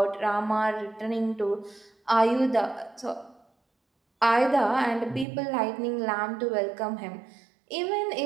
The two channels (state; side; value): drops out; left; at 5.2 s